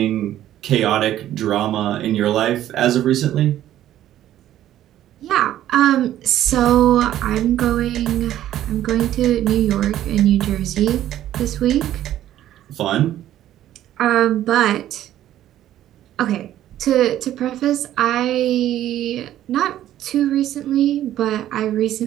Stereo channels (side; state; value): left; quieter; 12.5 dB